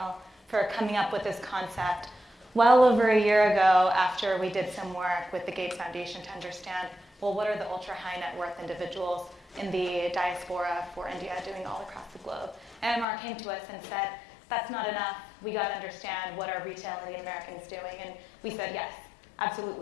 for coming up with this concept well over a year ago after we did some work with the Gates Foundation to understand, well, what are the ultra high net worth individuals in the diaspora for India doing all across the globe? And MR came to us and said, that's not enough. We got to understand what are retail Indian Americans doing. And we said, yes,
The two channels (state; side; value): drops out; right; at 13.1 s